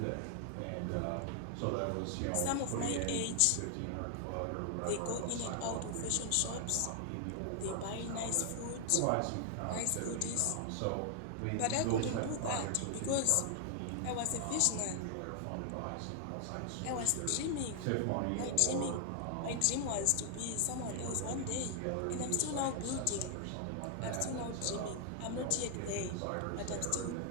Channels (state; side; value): different; both; correlation 0.00